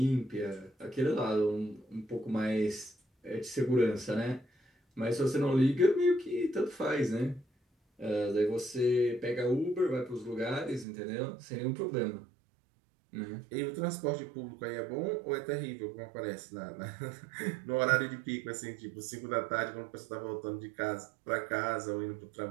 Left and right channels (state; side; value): drops out; left; at 10.9 s